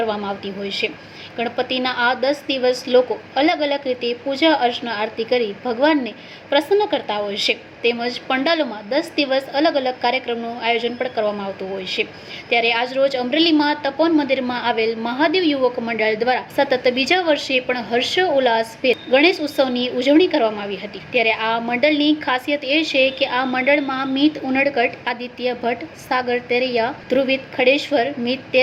આવતી હોય છે। ગણપતિના આ 10 દિવસ લોકો અલગ અલગ રીતે પૂજા અર્ચના આરતી કરી ભગવાનને પ્રસન્ન કરતા હોય છે। તેમજ પંડાલોમાં 10 દિવસ અલગ અલગ કાર્યક્રમનું આયોજન પણ કરવામાં આવતું હોય છે। ત્યારે આજરોજ અમરેલીમાં તપોવન મંદિરમાં આવેલ મહાદેવ યુવક મંડળ દ્વારા સતત બીજા વર્ષે પણ હર્ષોલ્લાસભેર ગણેશ ઉત્સવની ઉજવણી કરવામાં આવી હતી। ત્યારે આ મંડળની ખાસિયત એ છે કે આ મંડળમાં મિત ઉનડકટ, આદિત્ય ભટ્ટ, સાગર તેરૈયા, ધ્રુવિત ખડેશ્વર, મિત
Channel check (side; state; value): both; identical; correlation 1.00